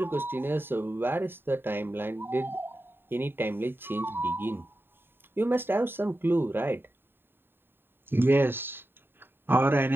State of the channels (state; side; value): late; left; 0.10 ms